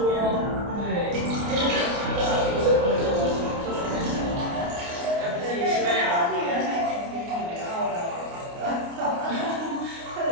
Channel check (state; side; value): late; left; 29 ms